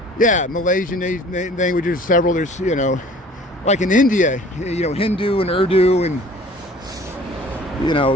Yeah, Malaysian languages, several. There's, you know, like in India, you know, Hindu and Urdu, and, you know,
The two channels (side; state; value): both; normal; correlation 0.49